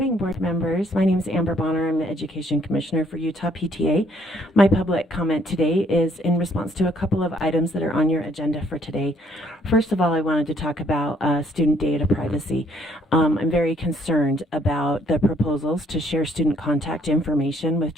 board members. My name is Amber Bonner. I'm the Education Commissioner for Utah PTA. My public comment today is in response to a couple of items that are on your agenda for today. First of all, I wanted to talk about student data privacy. I'm very concerned about the proposals to share student contact information with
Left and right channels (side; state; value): both; normal; correlation 0.66